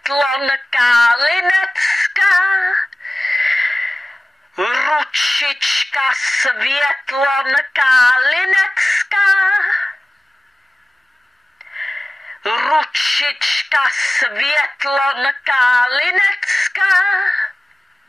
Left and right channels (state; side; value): normal; both; correlation 0.97